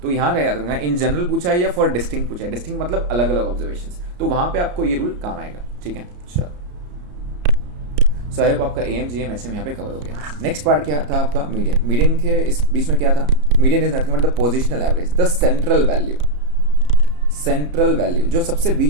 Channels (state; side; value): late; left; 34 ms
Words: तो यहाँ याद रखना, इन जनरल पूछा है या फॉर डिस्टिंक्ट पूछा है। डिस्टिंक्ट मतलब अलग अलग ऑब्जर्वेशन, तो वहाँ पे आपको ये रूल काम आएगा, ठीक है। चलो, सो आई होप आपका am gm hm यहाँ पे कवर हो गया। नेक्स्ट पार्ट क्या था आपका, मीडियन। मीडियन के इस बीच में क्या था, median is nothing but the positional average, the central value जो सबसे